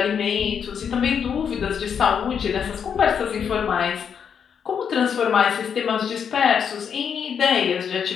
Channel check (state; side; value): quieter; right; 7.4 dB